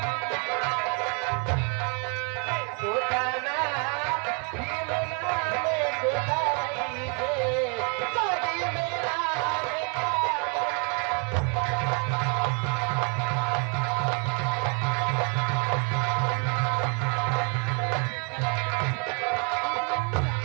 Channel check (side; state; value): left; quieter; 37.7 dB